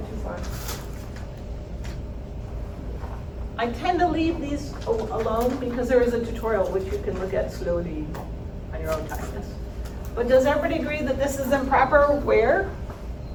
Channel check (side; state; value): both; identical; correlation 1.00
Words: too far. I tend to leave these alone because there is a tutorial which you can look at slowly on your own time. But does everybody agree that this is improper where?